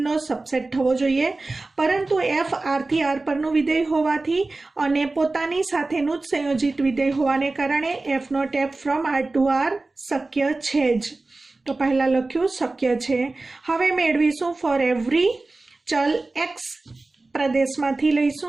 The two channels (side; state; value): left; quieter; 3.3 dB